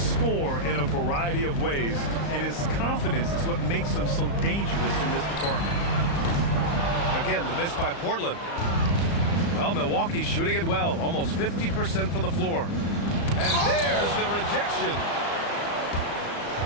in a variety of ways, and his confidence is what makes him so dangerous in this department. Again, the miss by Portland. Well, Milwaukee's shooting it well, almost 50% from the floor. And there's the rejection.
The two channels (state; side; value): late; right; 35 ms